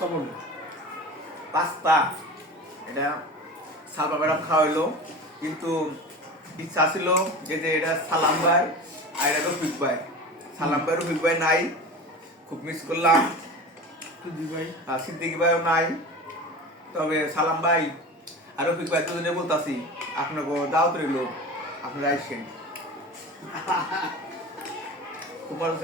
বলে। পাস্তা। এটা সালমা ম্যাডাম খাওয়াইলো, কিন্তু ইচ্ছা ছিল যে এটা সালাম ভাই আর এটা রফিক ভাই। সালাম ভাই রফিক ভাই নাই, খুব মিস করলাম। সিদ্দিকি ভাইও নাই। তবে সালাম ভাই আর রফিক ভাই দুজনে বলতাছি আপনাকে দাওয়াত রইল, আপনারা আইসেন। তোমার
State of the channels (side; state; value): both; normal; correlation 0.33